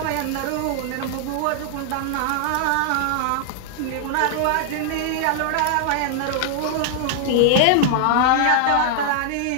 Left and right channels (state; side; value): different; both; correlation -0.01